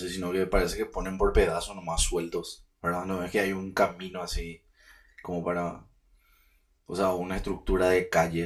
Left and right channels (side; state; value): both; identical; correlation 1.00